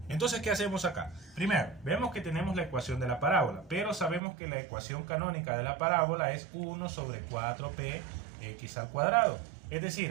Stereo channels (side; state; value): left; drops out; at 4.2 s